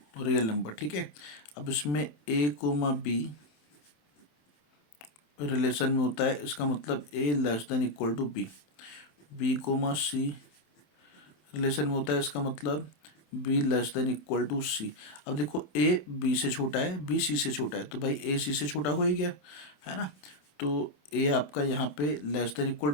real number. ठीक है, अब इसमें ए कोमा बी रिलेशन में होता है, इसका मतलब A less than equal to B. B comma C relation में होता है, इसका मतलब B less than equal to C. अब देखो ए बी से छोटा है, बी सी से छोटा है, तो भाई ए सी से छोटा हो ही गया है ना, तो ए आपका यहाँ पे लेस देन इक्वल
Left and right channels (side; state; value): right; late; 27 ms